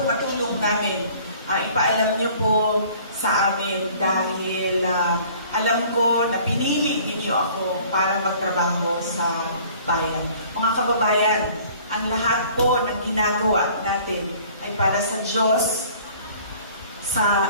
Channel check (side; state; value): both; inverted; correlation -0.52